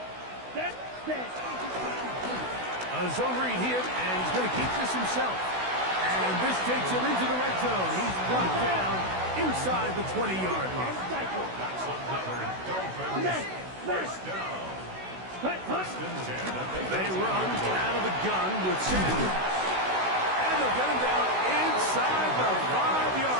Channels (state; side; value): late; left; 16 ms